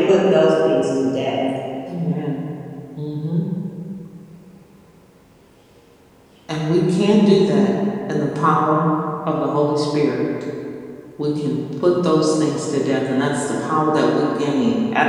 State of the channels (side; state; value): both; identical; correlation 1.00